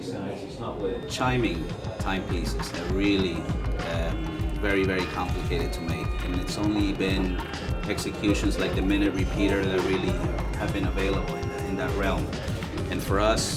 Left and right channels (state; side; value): identical; both; correlation 1.00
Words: it's not working. Chiming timepieces are really very, very complicated to make, and it's only been executions like the minute repeater that really have been available in that realm. And for